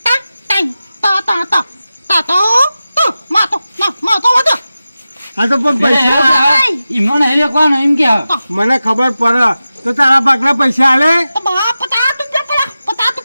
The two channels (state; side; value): inverted; both; correlation -0.94